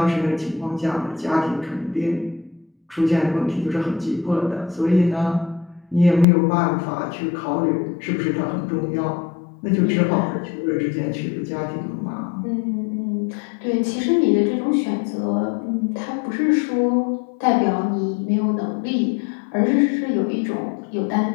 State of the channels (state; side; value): drops out; right; at 6.2 s